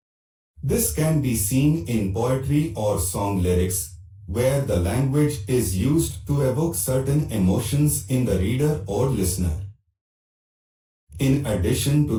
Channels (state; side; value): identical; both; correlation 1.00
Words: This can be seen in poetry or song lyrics, where the language is used to evoke certain emotions in the reader or listener. In addition